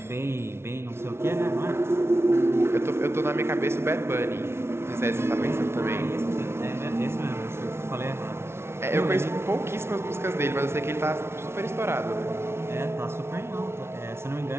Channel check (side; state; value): left; late; 0.12 ms